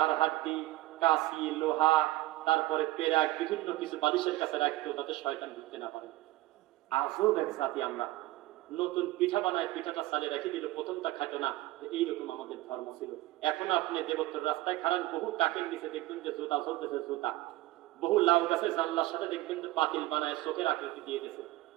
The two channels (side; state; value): left; quieter; 17.5 dB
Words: হাড্ডি, কাশি, লোহা, তারপরে পেরাক, বিভিন্ন কিছু বালিশের কাছে রাখতো যাতে শয়তান ঢুকতে না পারে। আজও এক জাতি আমরা নতুন পিঠা বানায়, পিঠাটা সালে রেখে দিল, প্রথমটা খাইতো না। এইরকম আমাদের ধর্ম ছিল। এখন আপনি দেবত্তর রাস্তায় খারান, বহু কাকের নিচে দেখবেন যে জুতা চলতেছে, জুতা বহু লাউ গাছের জানলার সাথে দেখবেন যে পাতিল বানায় চোখের আকৃতি দিয়ে গেছে।